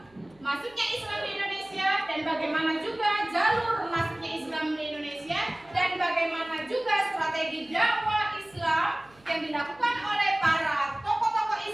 masuknya Islam di Indonesia dan bagaimana juga jalur masuknya Islam di Indonesia dan bagaimana juga strategi dakwah Islam yang dilakukan oleh para tokoh-tokoh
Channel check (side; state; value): right; noise; hum, 30 dB below the sound